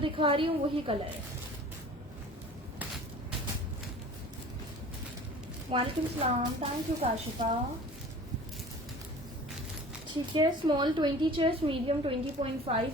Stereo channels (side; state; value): both; normal; correlation 0.43